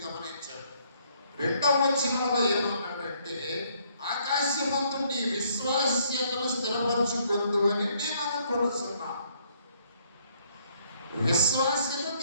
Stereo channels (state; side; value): inverted; both; correlation -0.67